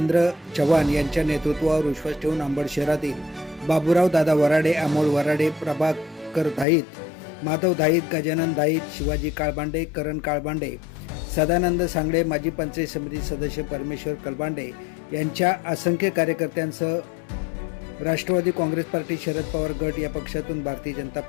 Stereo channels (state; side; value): drops out; right; at 6.7 s